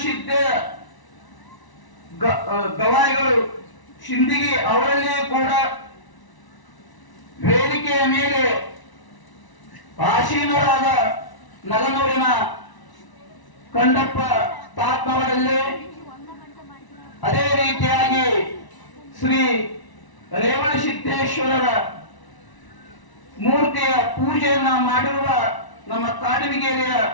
ಗವಾಯಿಗಳು ಶಿಂದಗಿ ಅವರಲ್ಲಿಯೂ ಕೂಡ ವೇದಿಕೆಯ ಮೇಲೆ ಆಸೀನರಾದ ನಗನೂರಿನ ಕಂಡಪ್ಪ ತಾತ್ನವರಲ್ಲಿ, ಅದೇ ರೀತಿಯಾಗಿ ಶ್ರೀ ರೇವಣಸಿದ್ದೇಶ್ವರರ ಮೂರ್ತಿಯ ಪೂಜೆಯನ್ನ ಮಾಡಿರುವ ನಮ್ಮ ಕಾಡಮಿಗೇರಿಯ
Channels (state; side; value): late; right; 1.0 ms